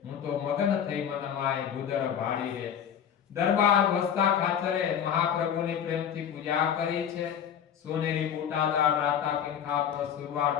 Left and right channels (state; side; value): quieter; right; 8.7 dB